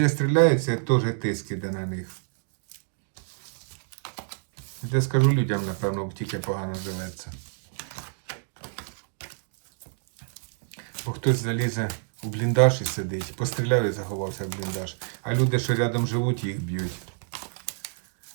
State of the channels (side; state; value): left; silent; digital silence